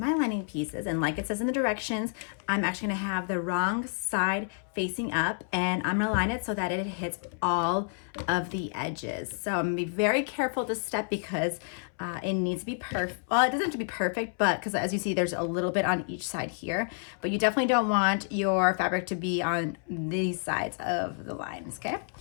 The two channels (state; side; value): silent; right; 58 dB below the other